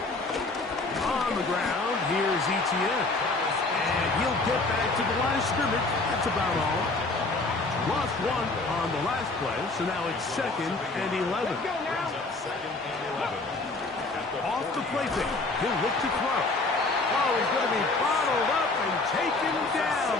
On the ground, here's Etienne. And he'll get back to the line of scrimmage. That's about all. Lost one on the last play, so now it's second and 11. Off the play fake, he'll look to throw. Oh, he's going to be bottled up and taken down.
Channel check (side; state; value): right; quieter; 3.4 dB